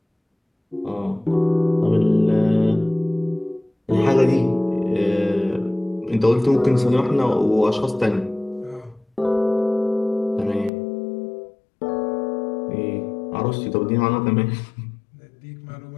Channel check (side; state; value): right; drops out; at 10.7 s